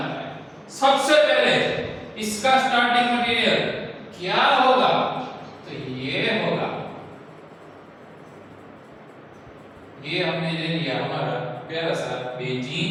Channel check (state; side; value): identical; both; correlation 1.00